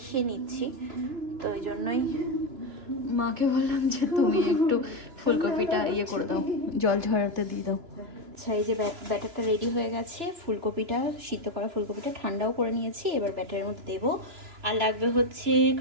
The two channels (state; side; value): late; left; 3.0 ms